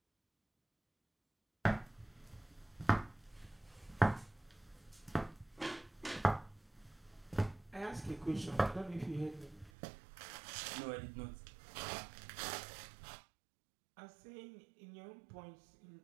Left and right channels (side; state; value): left; drops out; at 9.7 s